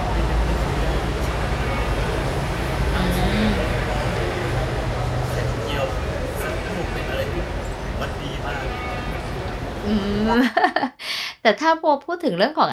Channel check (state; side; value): identical; both; correlation 1.00